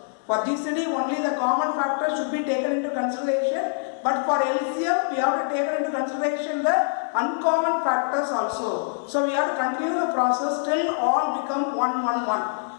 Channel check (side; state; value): right; silent; digital silence